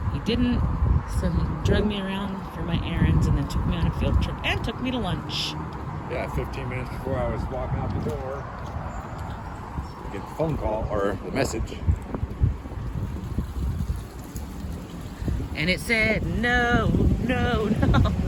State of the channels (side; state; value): both; identical; correlation 1.00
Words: He didn't, so he drug me around for my errands and then took me on a field trip and took me to lunch. Yeah, 15 minutes before I was walking out the door, I get the phone call or the message. And it said, no. No